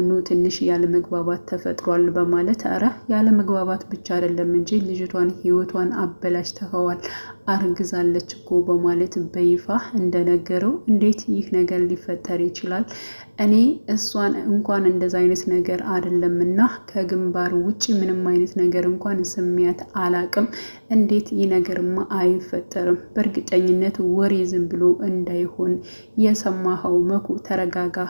ትንሽ ያለመግባባት ተፈጥሯል በማለት አረ ያለመግባባት ብቻ አይደለም እንጂ ልጅቷን ህይወቷን አበላሽተኸዋል፣ አርግዛለች እኮ በማለት በይፋ እንደነገረው፣ እንዴት ይህ ነገር ሊፈጠር ይችላል? እኔ እሷን እንኳን እንደዛ አይነት ነገር አይደለምና ከግንባር ውጭ ምንም አይነት ነገር እንኳን ስሚያት አላቅም። እንዴት ይህ ነገርማ አይፈጠርም? በእርግጠኝነት ወሬ ዝም ብሎ እንዳይሆን የሰማኸው መኩ፣ ተረጋጋ።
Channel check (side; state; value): both; inverted; correlation -1.00